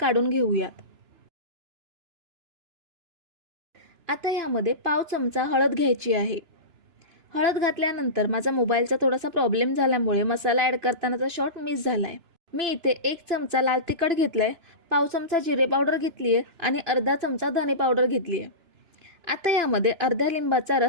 घेऊयात। आता यामध्ये पाव चमचा हळद घ्यायची आहे। हळद घातल्यानंतर माझा मोबाईलचा थोडासा प्रॉब्लेम झाल्यामुळे मसाला ॲड करतानाचा शॉट मिस झालाय। मी इथे 1 चमचा लाल तिखट घेतलाय, पाव चमचा जिरे पावडर घेतली आहे आणि अर्धा चमचा धने पावडर घेतली आहे। आता यामध्ये अर्ध्या लिंबाचा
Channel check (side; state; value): left; late; 2.9 ms